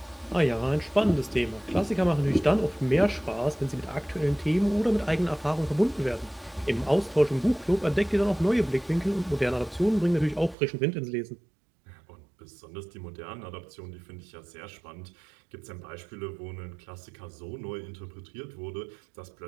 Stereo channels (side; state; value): left; drops out; at 10.6 s